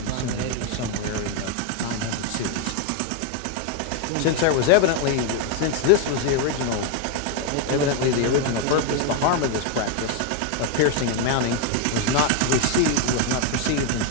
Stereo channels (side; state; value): both; different; correlation 0.01